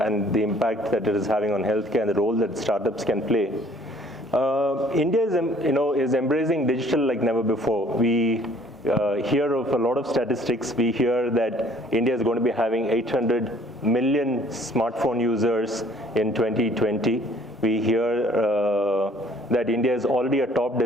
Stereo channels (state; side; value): normal; both; correlation 0.57